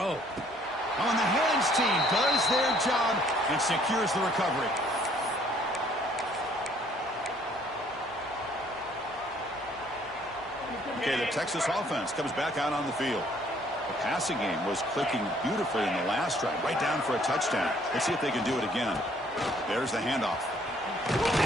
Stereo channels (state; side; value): normal; both; correlation 0.61